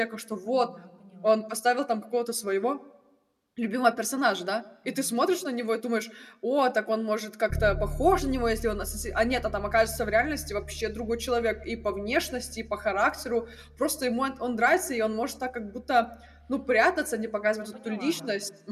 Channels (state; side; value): identical; both; correlation 1.00